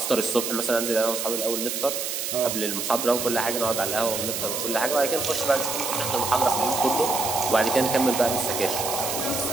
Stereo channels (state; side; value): noise; right; hiss, 3 dB below the sound